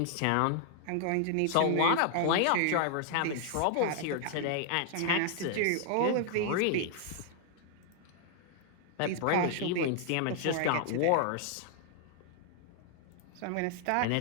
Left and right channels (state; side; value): different; both; correlation 0.00